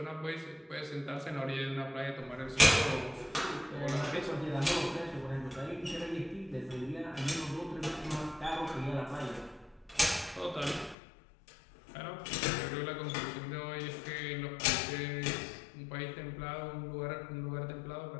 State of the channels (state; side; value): drops out; right; at 11.0 s